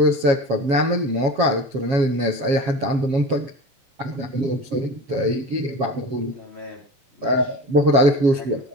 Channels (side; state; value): left; late; 7.3 ms